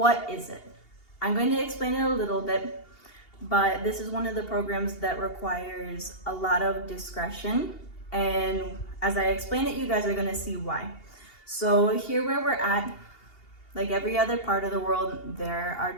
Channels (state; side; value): late; right; 2.8 ms